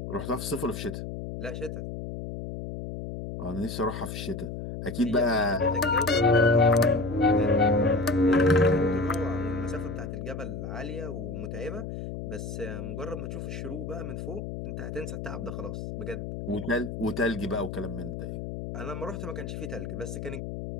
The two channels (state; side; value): noise; left; hum, 7 dB below the sound